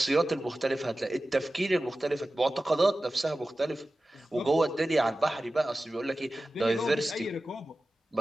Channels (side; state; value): both; normal; correlation 0.95